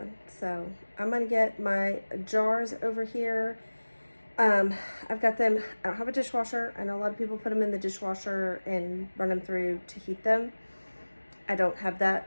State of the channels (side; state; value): both; inverted; correlation -1.00